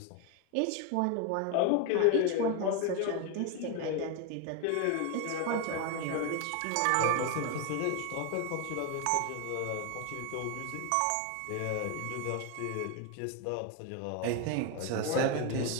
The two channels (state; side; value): different; both; correlation 0.01